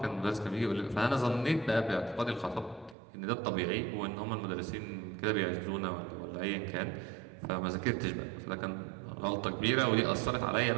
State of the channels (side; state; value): left; drops out; at 3.0 s